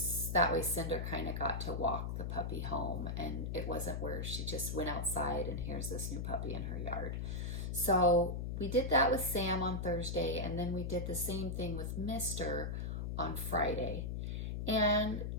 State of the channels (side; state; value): left; noise; hum, 3 dB below the sound